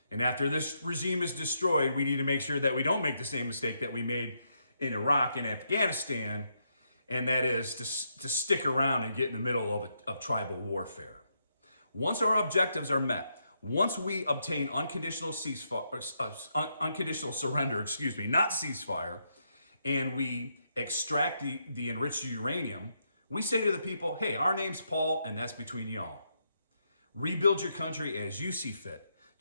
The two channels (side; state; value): both; inverted; correlation -0.79